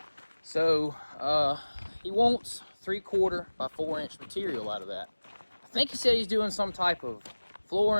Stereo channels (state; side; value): inverted; both; correlation -1.00